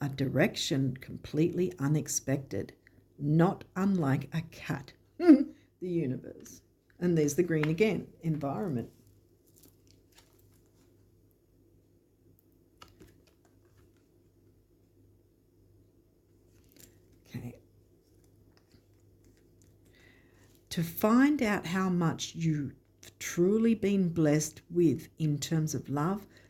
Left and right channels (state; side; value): identical; both; correlation 1.00